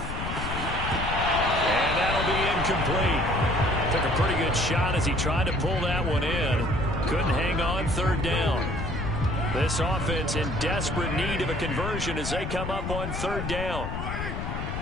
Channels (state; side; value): noise; left; rumble, 4 dB below the sound